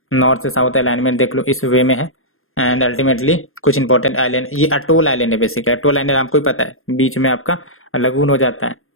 नॉर्थ से साउथ अलाइनमेंट देख लो इस वे में है। एंड अल्टीमेटली कुछ इंपॉर्टेंट आइलैंड, ये अटोल आइलैंड है बेसिकली। अटोल आइलैंड आपको ही पता है, बीच में आपका लगून हो जाता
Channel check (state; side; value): late; right; 0.61 ms